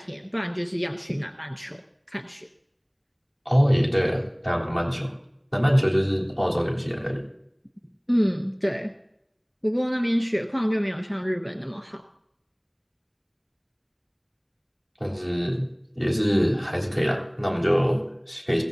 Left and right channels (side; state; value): both; identical; correlation 1.00